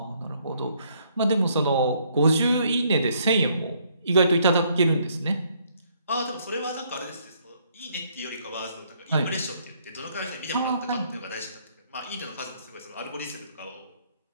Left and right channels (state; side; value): inverted; both; correlation -0.68